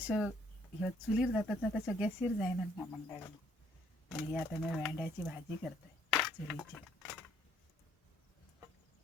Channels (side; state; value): both; normal; correlation 0.65